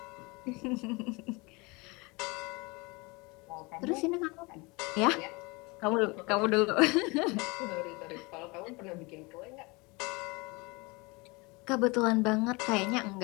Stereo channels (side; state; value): right; quieter; 26.3 dB